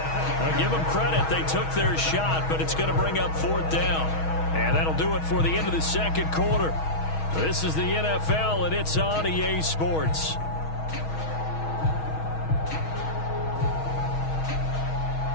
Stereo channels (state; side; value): late; right; 6.3 ms